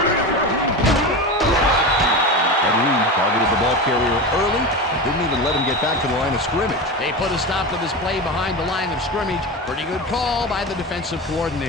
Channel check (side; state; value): both; normal; correlation 0.24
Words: And Reed targeted the ball carrier early and didn't even let him get back to the line of scrimmage. They put a stop to this play behind the line of scrimmage. Pretty good call by the defensive